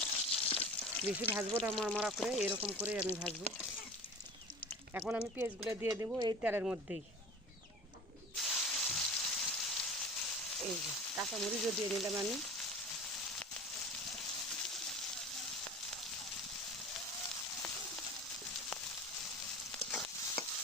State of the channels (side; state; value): both; normal; correlation 0.37